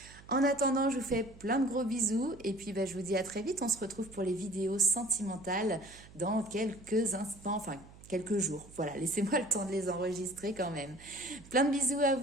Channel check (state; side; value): noise; right; hum, 21 dB below the sound